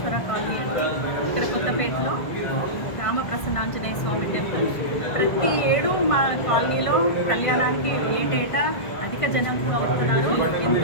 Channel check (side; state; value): right; late; 1.5 ms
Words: కాలనీ అండి. ఇక్కడ కొత్తపేటలో రామప్రసన్నాంజనేయ స్వామి టెంపుల్. ప్రతి ఏడు మా కాలనీలో కళ్యాణానికి ఏటేటా అధిక జనం అవుతున్నారు.